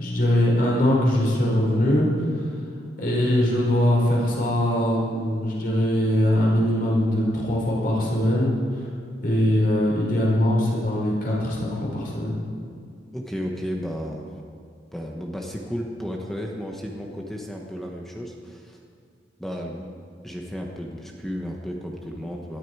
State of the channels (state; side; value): normal; both; correlation 0.80